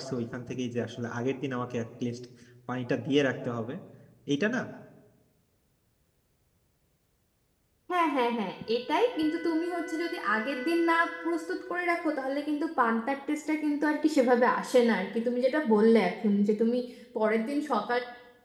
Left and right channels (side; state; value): both; identical; correlation 1.00